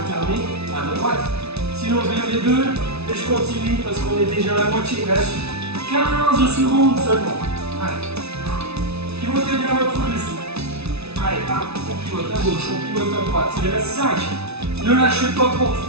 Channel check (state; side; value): late; left; 0.80 ms